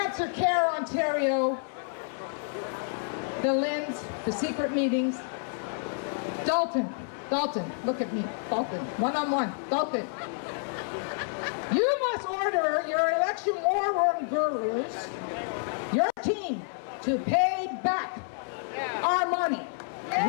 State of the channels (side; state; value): right; silent; 59 dB below the other